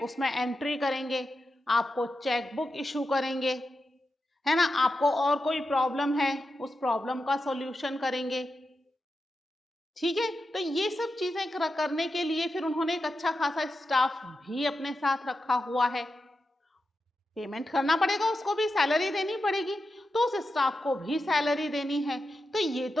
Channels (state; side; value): normal; both; correlation 0.89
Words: उसमें एंट्री करेंगे, आपको चेकबुक इशू करेंगे, है ना, आपको और कोई प्रॉब्लम है उस प्रॉब्लम का सॉल्यूशन करेंगे। ठीक है, तो ये सब चीजें करने के लिए फिर उन्होंने एक अच्छा खासा स्टाफ भी अपने साथ रखा हुआ है। पेमेंट करना पड़ेगा, उसको भी सैलरी देनी पड़ेगी, तो उस स्टाफ को भी सैलरी देनी है। तो ये